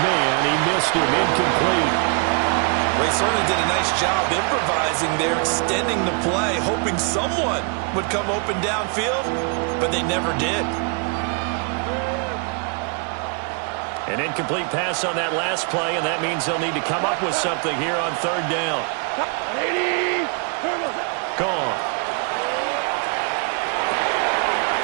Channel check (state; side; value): quieter; left; 38.2 dB